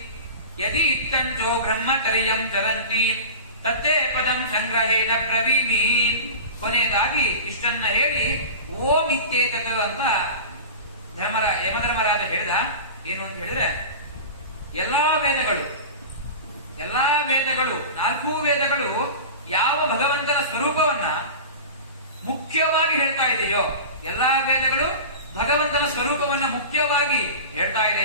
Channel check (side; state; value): both; inverted; correlation -0.32